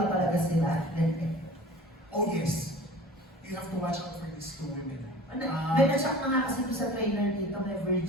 talaga sila. Oh yes, you have to watch out for these 2 women. May na-shock na nga kasi doon sa trailer dito, may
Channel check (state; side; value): normal; both; correlation 0.42